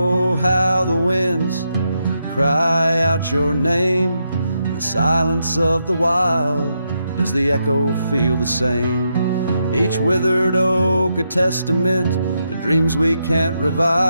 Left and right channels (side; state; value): both; inverted; correlation -0.82